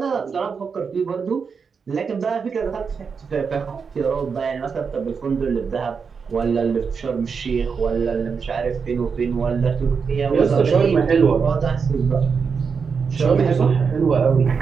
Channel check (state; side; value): quieter; left; 5.8 dB